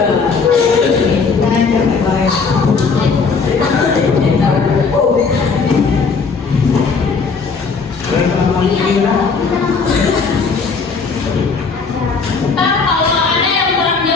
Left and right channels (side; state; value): right; quieter; 5.0 dB